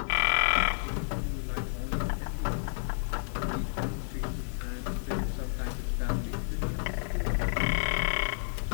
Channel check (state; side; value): silent; right; digital silence